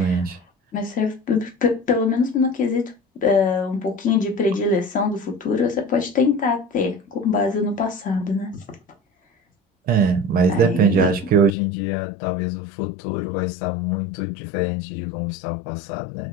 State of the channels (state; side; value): drops out; right; at 11.5 s